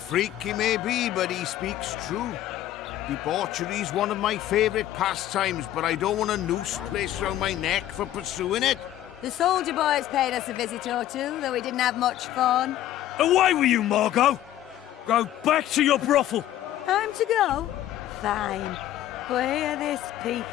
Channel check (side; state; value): right; quieter; 13.0 dB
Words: he may be, but he speaks true. Debauchery's one of my favourite pastimes, but I don't want a noose placed round my neck for pursuing it. The soldier boys paid us a visit or two, though we didn't have much fun. Away with you, Margot! Go back to your brothel. Time to go? Fine. But hear this,